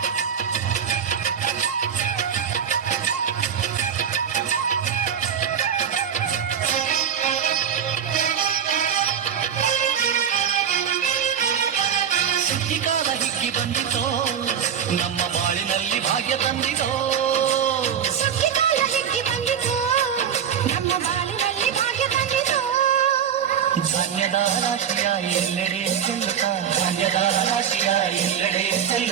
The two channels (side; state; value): left; quieter; 8.3 dB